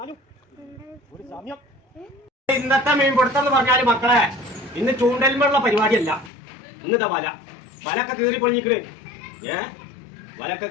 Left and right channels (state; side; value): drops out; right; at 6.3 s